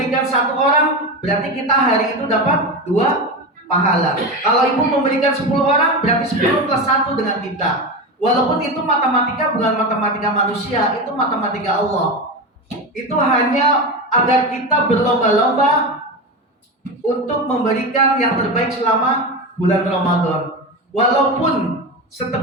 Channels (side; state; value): both; normal; correlation 0.21